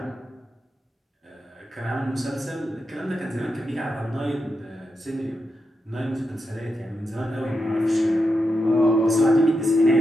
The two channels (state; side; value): normal; both; correlation 0.86